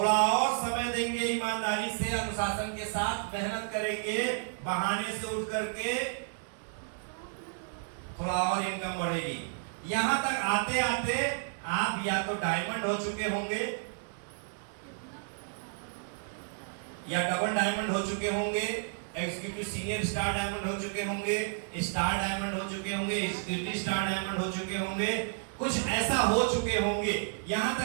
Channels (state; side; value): silent; left; digital silence